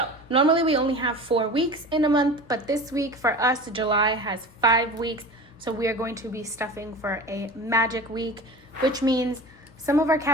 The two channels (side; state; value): left; noise; hum, 24 dB below the sound